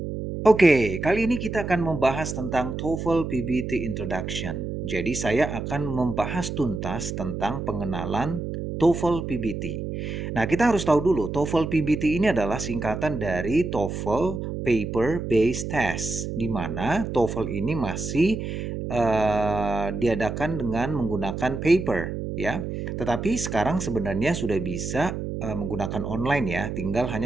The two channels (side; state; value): right; noise; hum, 5 dB below the sound